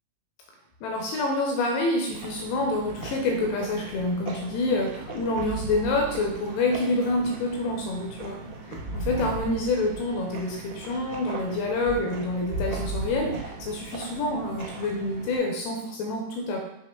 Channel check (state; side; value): late; right; 18 ms